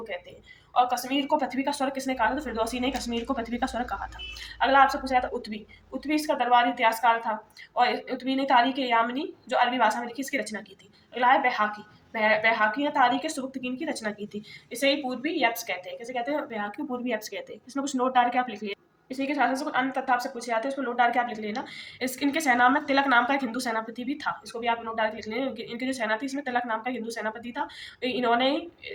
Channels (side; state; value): both; identical; correlation 1.00